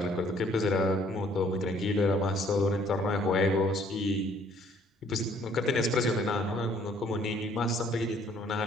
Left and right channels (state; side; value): normal; both; correlation 0.61